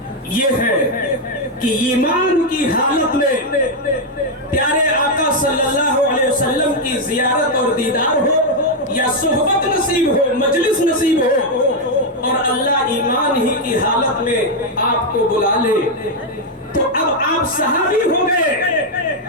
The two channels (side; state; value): both; normal; correlation 0.01